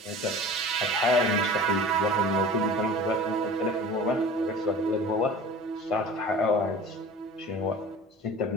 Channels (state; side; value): normal; both; correlation 0.39